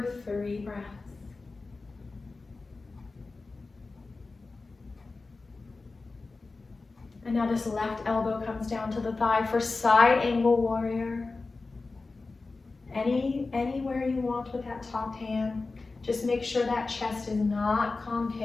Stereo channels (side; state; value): right; quieter; 3.7 dB